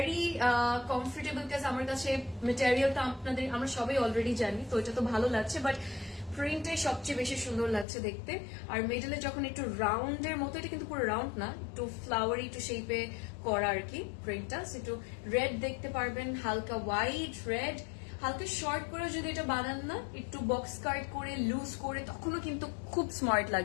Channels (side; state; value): right; drops out; at 7.9 s